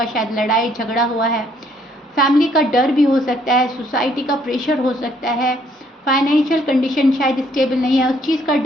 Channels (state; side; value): normal; both; correlation 0.66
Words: शायद लड़ाई झगड़ा हुआ है, फैमिली का डर भी हो सकता है, सोसाइटी का प्रेशर हो सकता है, फाइनेंशियल कंडीशन शायद स्टेबल नहीं है, उस चीज़ का